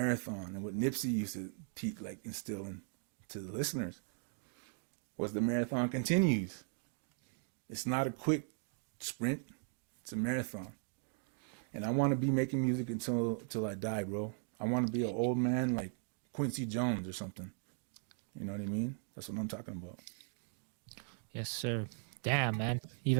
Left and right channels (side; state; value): left; silent; 52 dB below the other